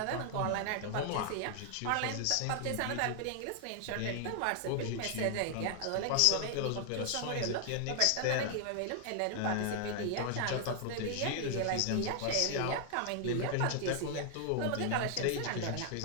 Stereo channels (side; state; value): both; different; correlation 0.00